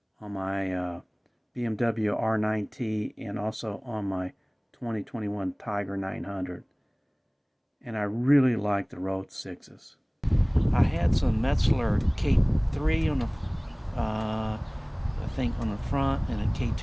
on my BMW R9T and also on my 2021 Tiger 900, and I really like the Road 6s. I had some Metzler K3 on the I think on the front and a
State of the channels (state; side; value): identical; both; correlation 1.00